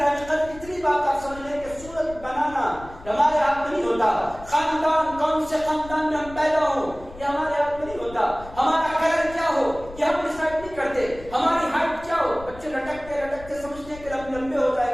قدر، اتنی بات آپ سمجھ لیں کہ صورت بنانا ہمارے ہاتھ میں نہیں ہوتا. خاندان کون سے خاندان میں ہم پیدا ہوں یہ ہمارے ہاتھ میں نہیں ہوتا. ہمارا کلر کیا ہو یہ ہم ڈیسائیڈ نہیں کرتے. ہماری ہائٹ کیا ہو، بچے لٹکتے لٹکتے سمجھتے ہیں کہ لمبے ہو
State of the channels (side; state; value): left; noise; rumble, 17 dB below the sound